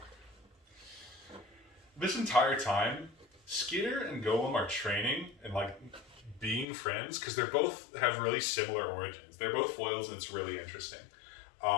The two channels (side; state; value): right; drops out; at 6.7 s